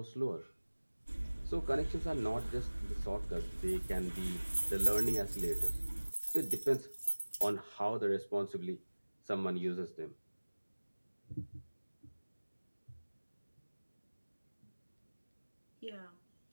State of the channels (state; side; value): inverted; both; correlation -1.00